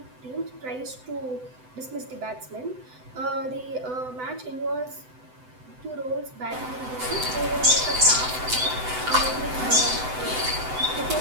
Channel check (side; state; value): left; late; 7.9 ms